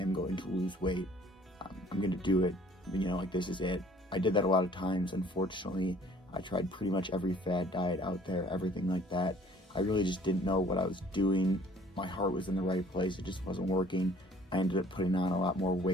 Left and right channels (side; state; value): both; normal; correlation 0.56